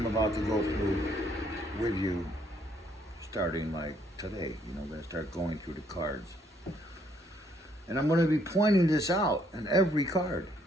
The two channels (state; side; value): normal; both; correlation 0.68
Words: about to go through with you starting like today. I'm going to start going through the cards. And I'm going to be pointing this out in every card.